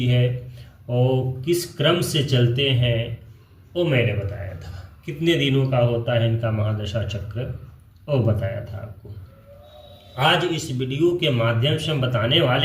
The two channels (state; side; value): identical; both; correlation 1.00